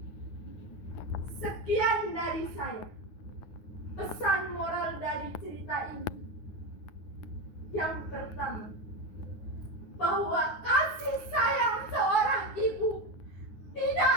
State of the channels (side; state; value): right; late; 9.6 ms